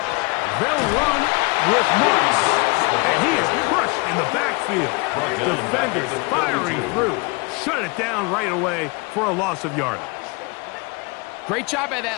They'll run with Marks, and he is crushed in the backfield. Defenders firing through. Shut it down right away for a loss of yardage. Great job by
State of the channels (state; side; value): quieter; right; 28.3 dB